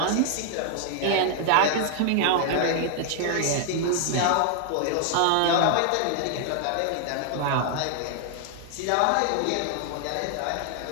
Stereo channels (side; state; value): both; different; correlation 0.00